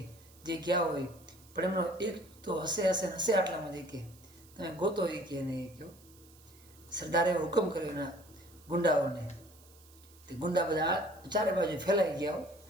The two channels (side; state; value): right; noise; hiss, 25 dB below the sound